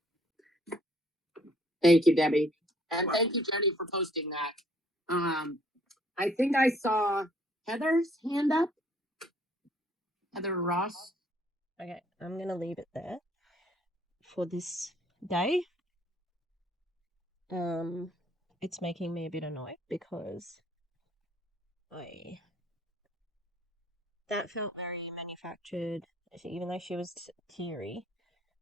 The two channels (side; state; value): both; normal; correlation 0.62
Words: Thank you, Debbie. And thank you, Jenny, for posting that. I think I saw Heather's hand up. Heather Ross. Okay, I'm gonna leave it there for this day. It's making me a bit annoyed because that felt very manufactured. Even though she was teary,